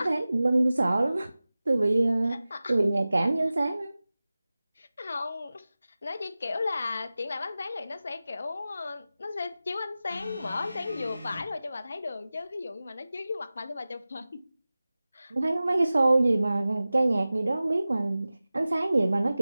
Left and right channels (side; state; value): both; inverted; correlation -0.96